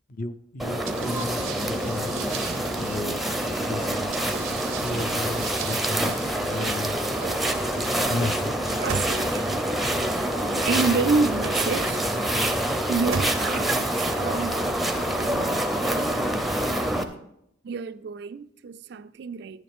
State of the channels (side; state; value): both; normal; correlation 0.66